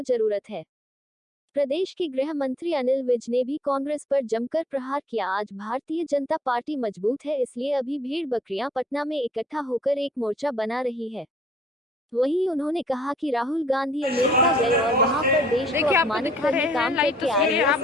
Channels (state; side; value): normal; both; correlation 0.63